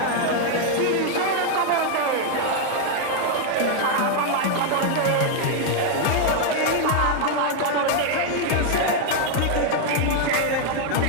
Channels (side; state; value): both; different; correlation 0.00